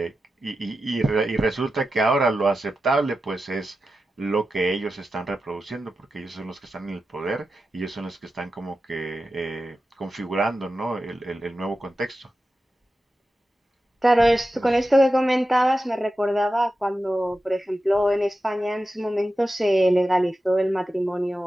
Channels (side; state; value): both; normal; correlation 0.92